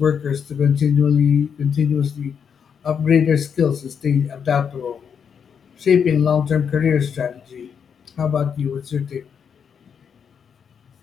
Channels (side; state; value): right; quieter; 7.1 dB